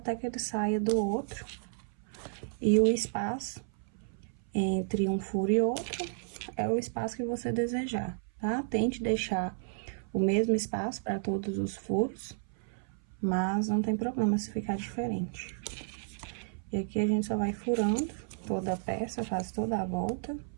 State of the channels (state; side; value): silent; left; 56 dB below the other